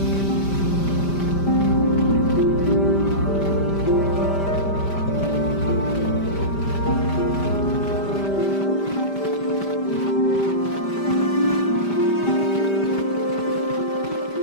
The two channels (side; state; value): right; late; 5.1 ms